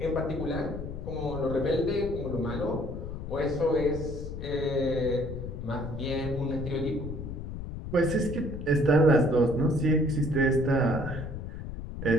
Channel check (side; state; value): left; noise; rumble, 8 dB below the sound